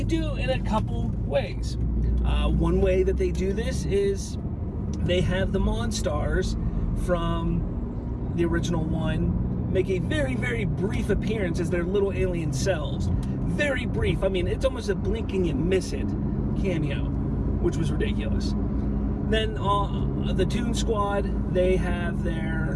do in a couple ways. One way that they do this is they have the Monstars from the original one make a very, very brief appearance as their little alien selves. Very brief. I mean, it's almost a blink and you miss it cameo, which was ridiculous. Then the Toon Squad, they have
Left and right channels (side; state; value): both; identical; correlation 1.00